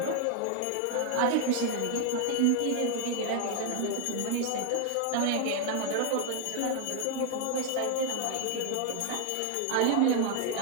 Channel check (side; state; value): both; different; correlation 0.00